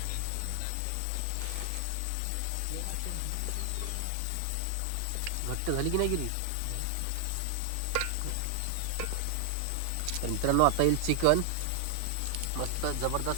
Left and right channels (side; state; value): both; different; correlation 0.00